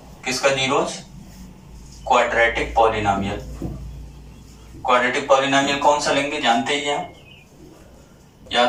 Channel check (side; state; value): both; identical; correlation 1.00